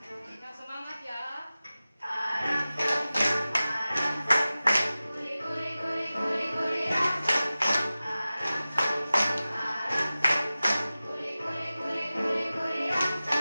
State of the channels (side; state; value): both; inverted; correlation -0.96